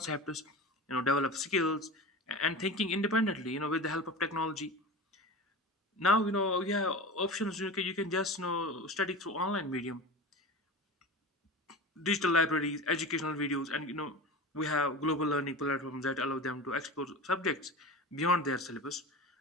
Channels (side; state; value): both; normal; correlation 0.30